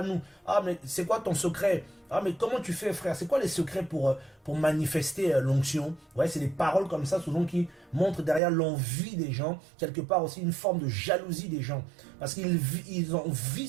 nous? Ah, mais c'est quoi ton secret? Ah, mais comment tu fais, frère? C'est quoi les secrets pour manifester l'onction? Ouais, c'est des paroles comme ça, souvent, qui montrent derrière l'envie des gens, quelque part aussi une forme de jalousie des gens. Parce qu'ils envient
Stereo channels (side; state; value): left; drops out; at 8.4 s